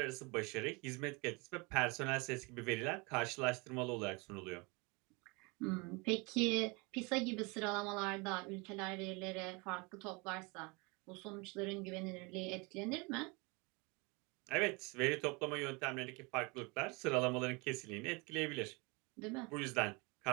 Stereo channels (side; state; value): left; quieter; 28.3 dB